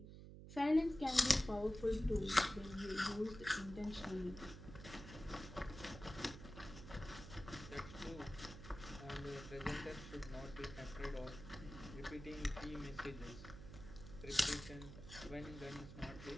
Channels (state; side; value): noise; right; hum, 12 dB below the sound